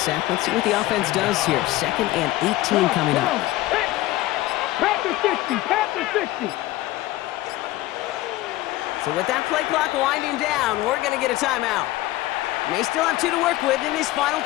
let's see what the offense does here. 2nd and 18 coming up. Panther 60, Panther 60. So with that play clock winding down, we're going to get a timeout. May still have 2 to work with in this final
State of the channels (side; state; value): right; quieter; 16.9 dB